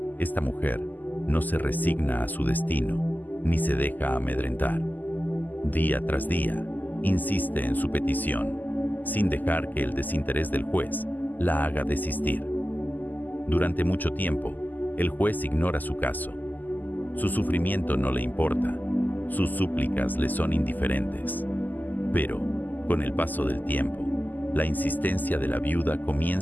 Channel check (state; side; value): late; right; 0.085 ms